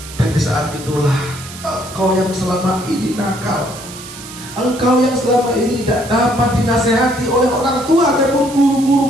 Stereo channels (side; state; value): right; noise; hiss, 14 dB below the sound